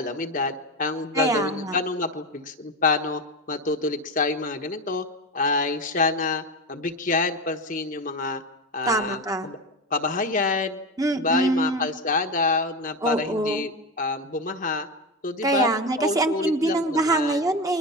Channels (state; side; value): normal; both; correlation 0.19